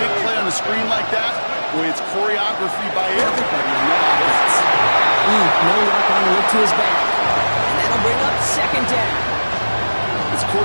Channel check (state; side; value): inverted; both; correlation -1.00